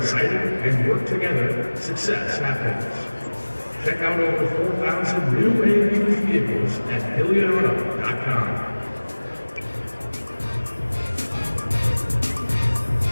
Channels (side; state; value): both; inverted; correlation -1.00